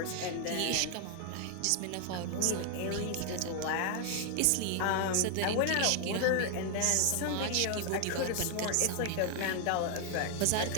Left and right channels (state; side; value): different; both; correlation 0.00